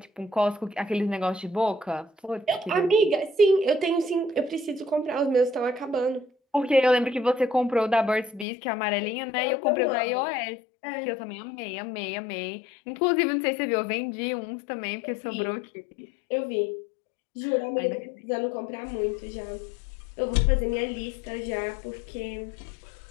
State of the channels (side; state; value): right; drops out; at 8.5 s